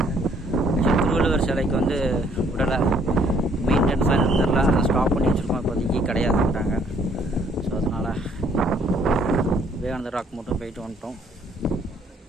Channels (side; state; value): both; normal; correlation 0.64